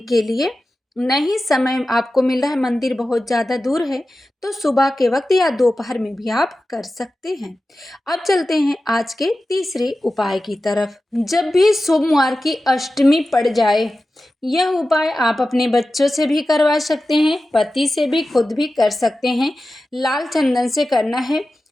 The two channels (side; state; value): both; normal; correlation 0.94